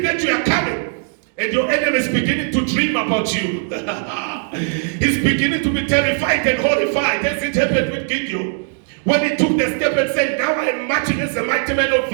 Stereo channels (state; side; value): silent; left; 57 dB below the other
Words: that you are coming. And your enemy is beginning to dream about you. He's beginning to be terrified and horrified, as it happened with Gideon. When he took the step and said, now I am marching as a mighty man of